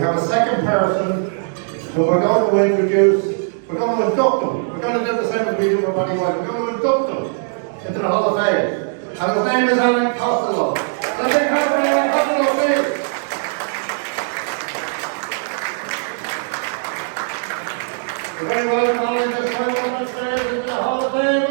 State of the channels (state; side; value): silent; left; digital silence